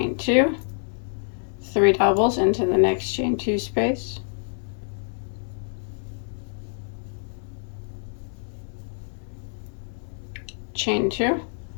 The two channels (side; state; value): right; silent; digital silence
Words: 2, 3 doubles into the next chain 2 space. Chain 2,